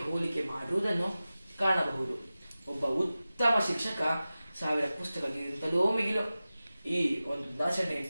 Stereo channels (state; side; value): inverted; both; correlation -0.96